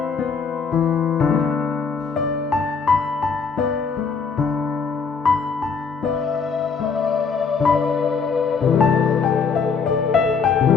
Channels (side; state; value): right; quieter; 5.4 dB